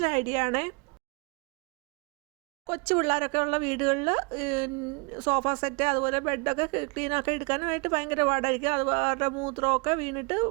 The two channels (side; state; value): left; quieter; 32.3 dB